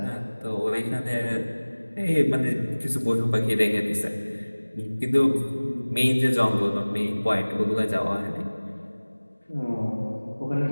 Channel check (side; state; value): both; inverted; correlation -1.00